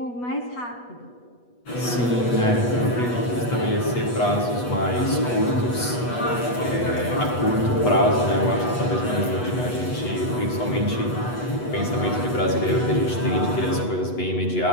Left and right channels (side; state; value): right; late; 8.2 ms